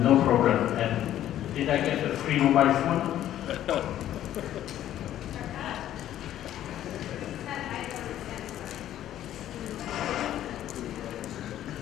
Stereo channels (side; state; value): right; quieter; 12.1 dB